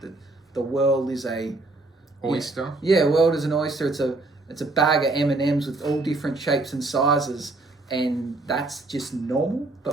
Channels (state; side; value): quieter; left; 3.1 dB